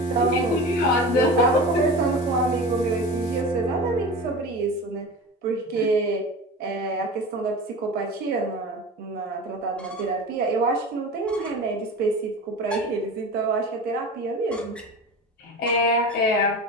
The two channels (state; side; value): normal; both; correlation 0.31